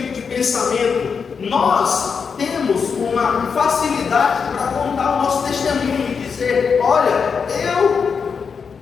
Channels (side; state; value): right; quieter; 5.9 dB